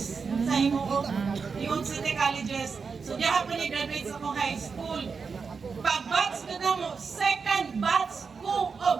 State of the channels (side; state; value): left; quieter; 5.3 dB